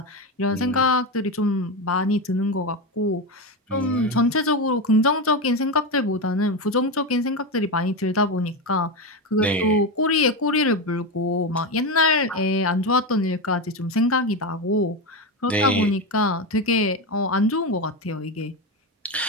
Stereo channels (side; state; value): both; normal; correlation 0.15